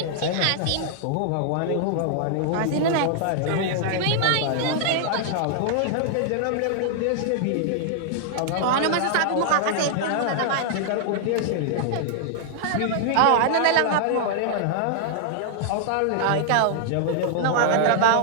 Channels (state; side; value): different; both; correlation -0.01